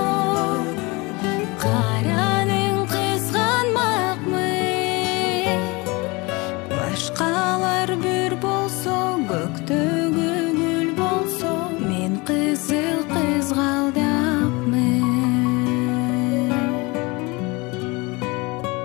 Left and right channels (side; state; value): right; quieter; 25.5 dB